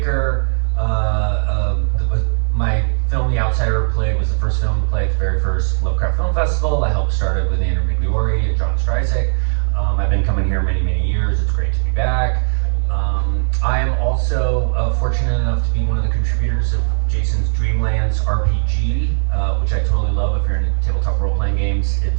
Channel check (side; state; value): left; silent; digital silence